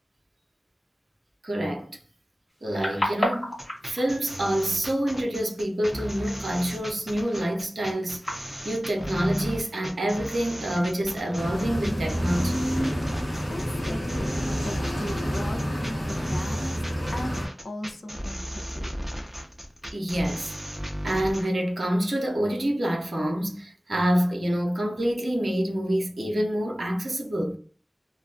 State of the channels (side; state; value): both; normal; correlation 0.97